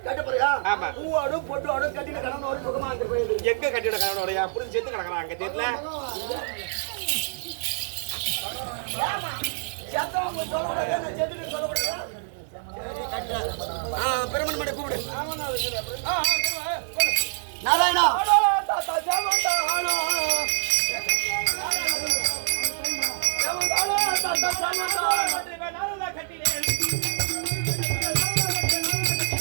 ஆமா, எங்க கட்டிட கணவனோட புரிஞ்சு சேர்த்து கிடக்குறான் அங்க தெரியல. பிரமன் மடை கூப்பிடு. நாராயணா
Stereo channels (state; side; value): silent; left; digital silence